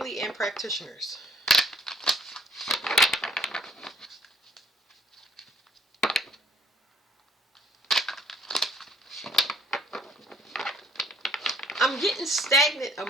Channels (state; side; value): normal; both; correlation 0.61